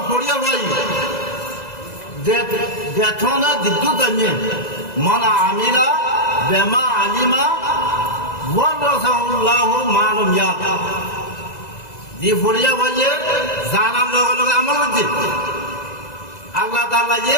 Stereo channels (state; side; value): late; right; 2.0 ms